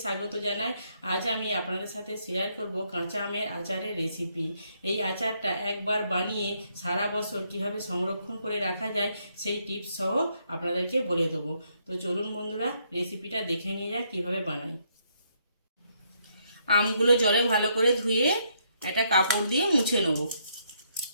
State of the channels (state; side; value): inverted; both; correlation -0.73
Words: স্বাগত জানাই। আজ আমি আপনাদের সাথে শেয়ার করব কাঁচা আমের আচারের রেসিপি। এই আচারটা একবার বানিয়ে সারা বছর কিভাবে সংরক্ষণ করে রাখা যায় সেই টিপস সহ আপনাদেরকে বলে দেবো। তো চলুন বন্ধুরা, রেসিপিটা দেখে নিয়ে যাক কীভাবে বানাই। আমগুলো জলে ভালো করে ধুয়ে একটা কাপড় দিয়ে মুছে নেব।